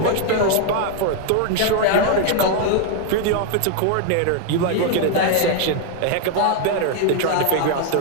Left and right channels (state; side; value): different; both; correlation 0.00